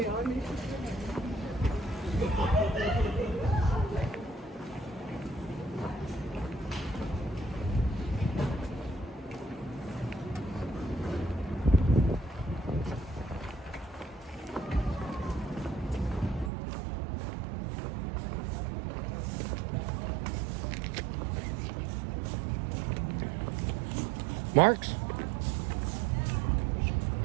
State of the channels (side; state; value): left; drops out; at 16.5 s